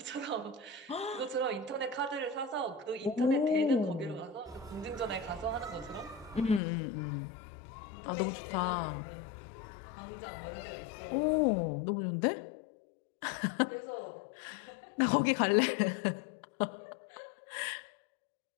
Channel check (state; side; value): drops out; right; at 6.6 s